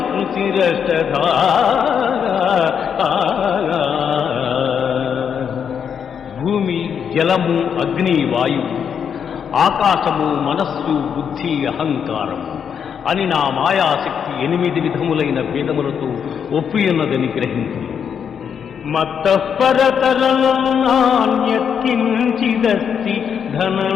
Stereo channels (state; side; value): quieter; right; 7.6 dB